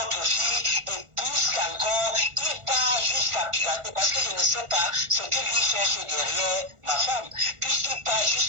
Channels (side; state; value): left; late; 1.4 ms